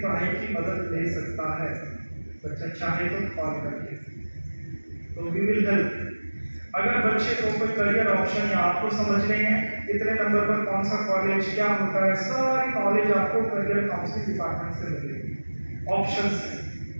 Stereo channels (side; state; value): both; inverted; correlation -1.00